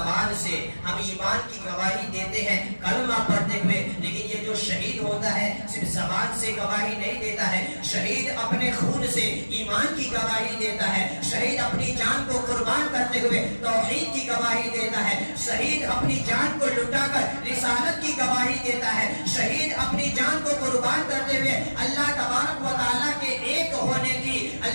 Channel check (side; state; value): both; inverted; correlation -1.00